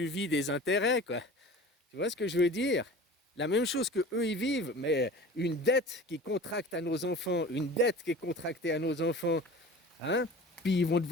vis des intérêts, quoi. Tu vois ce que je veux dire? La même chose que eux ils vivent, mais une dette qui contracte à nos enfants, une dette qui est contractée à nos enfants, hein? Puis ils vont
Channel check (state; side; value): normal; both; correlation 0.39